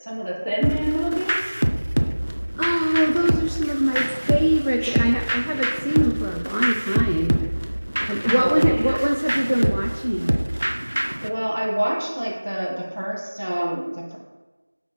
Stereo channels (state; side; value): inverted; both; correlation -1.00